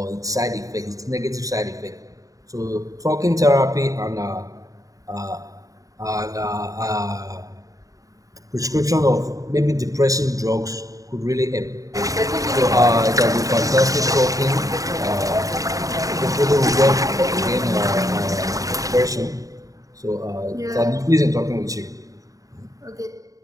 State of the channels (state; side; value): late; left; 0.16 ms